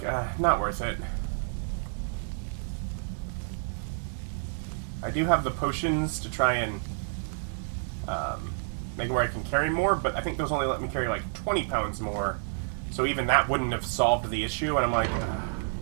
not worth it. I do have the potions to try and make it where I can carry more, but I think those only let me carry like 20 pounds more. So even that wouldn't have solved the issue, and I'm like,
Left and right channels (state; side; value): silent; left; digital silence